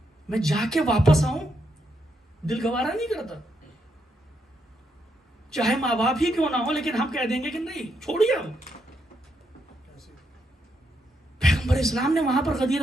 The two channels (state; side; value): normal; both; correlation 0.79